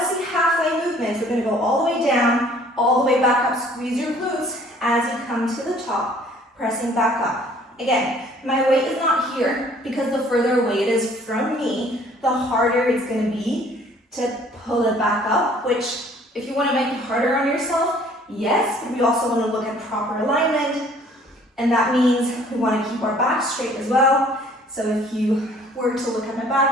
see halfway movements. We're gonna go all the way down, all the way back up, squeeze your glutes as you come to the top, pressing back up. Again, my weight is not here because the further away it is from me, the harder it's going to be to pull it back up, which if you want to make it harder on yourself, yes, but we also want to look at proper alignment, and that means we want to keep our back straight as well. So if you were to look at my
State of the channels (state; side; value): normal; both; correlation 0.56